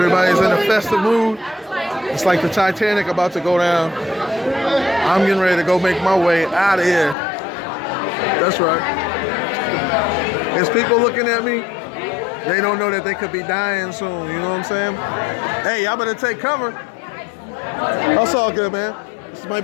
in a festive mood. It's like the Titanic about to go down. I'm getting ready to go make my way out of here. That's right. There's people looking at me. They don't know that they could be dying soon. You know what I'm saying? Hey, y'all better take cover. That's all good, man. This might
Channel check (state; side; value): drops out; right; at 7.2 s